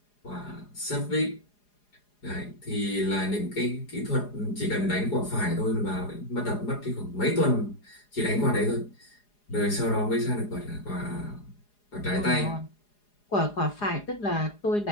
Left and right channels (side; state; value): right; late; 4.8 ms